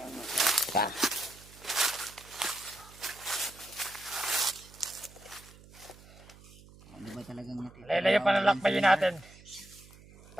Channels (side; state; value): right; noise; hum, 22 dB below the sound